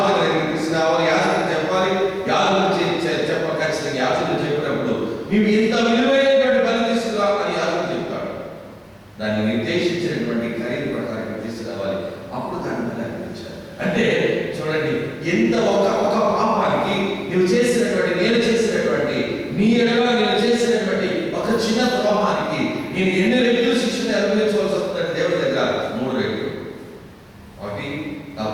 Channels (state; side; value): identical; both; correlation 1.00